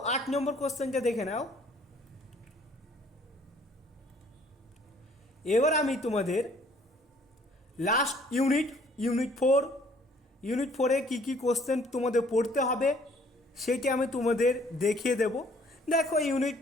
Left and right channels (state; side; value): normal; both; correlation 0.59